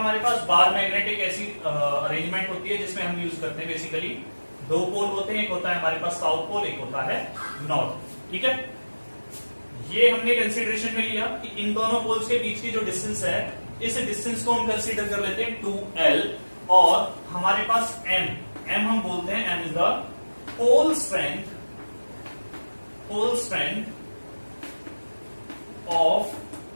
पास? बार मैग्नेट एक ऐसी अरेंजमेंट होती है जिसमें हम यूज करते हैं बेसिकली दो पोल होते हैं, एक होता है हमारे पास साउथ पोल, एक होता है नॉर्थ। ठीक है, ये हमने कंसीडरेशन में लिया कि इन दोनों पोल्स के बीच की जो डिस्टेंस है, इस डिस्टेंस को हम कंसीडर कर लेते हैं 2L, और हमारे पास M हम बोलते हैं M is the pole strength of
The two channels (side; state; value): both; inverted; correlation -1.00